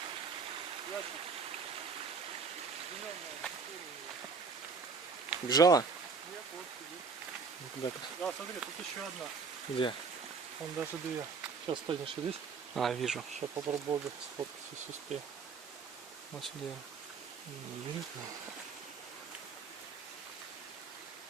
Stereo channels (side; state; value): left; quieter; 5.1 dB